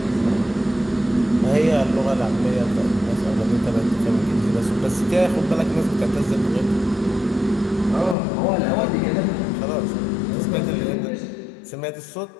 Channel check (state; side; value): drops out; right; at 8.2 s